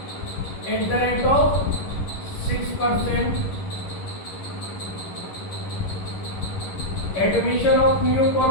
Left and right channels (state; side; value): late; right; 11 ms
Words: at the rate of 6%। Admission of new